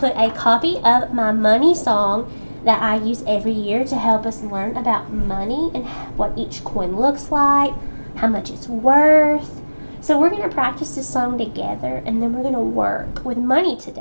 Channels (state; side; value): inverted; both; correlation -1.00